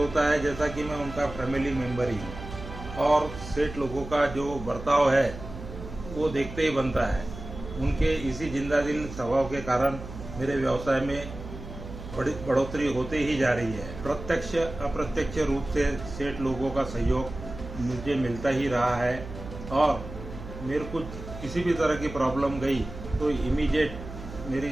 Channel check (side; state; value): right; noise; hum, 12 dB below the sound